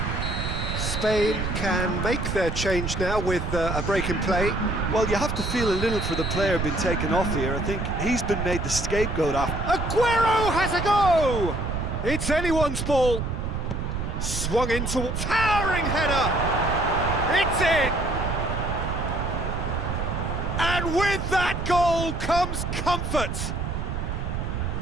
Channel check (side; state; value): right; noise; rumble, 3 dB below the sound